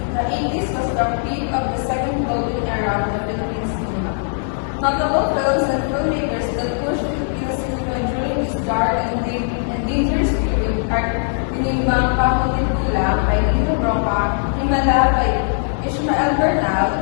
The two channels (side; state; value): right; silent; digital silence